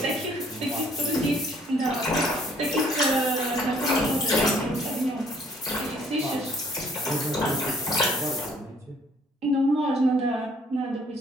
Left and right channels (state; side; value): normal; both; correlation 0.61